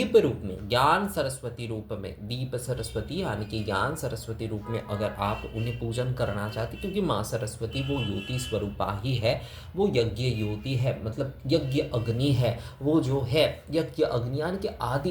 रूप में, ज्ञान सरस्वती रूप में, दीप सरस्वती यानी कि ज्ञान सरस्वती रूप में अगर आप उन्हें पूजन करना चाहते, क्योंकि माँ सरस्वती वो ज्योति स्वरूपा ही है, वो यज्ञ ज्योति है, मतलब यज्ञ अग्नि है। वो जो है यज्ञ अग्नि यानी कि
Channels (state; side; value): identical; both; correlation 1.00